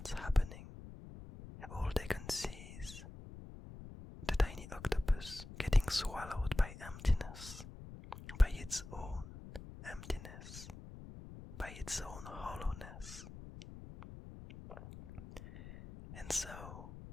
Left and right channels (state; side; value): noise; left; rumble, 13 dB below the sound